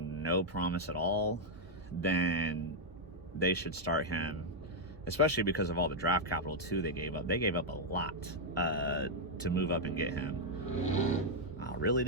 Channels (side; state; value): both; normal; correlation -0.02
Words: no promise at all, then they should start him, especially because of all the draft capital too they gave up. They gave up a lot to move up and get him. Oh, really,